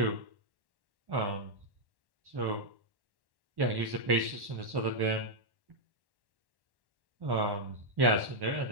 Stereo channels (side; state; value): left; late; 1.1 ms